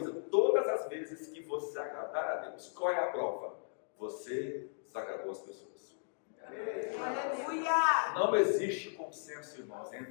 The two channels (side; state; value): right; silent; digital silence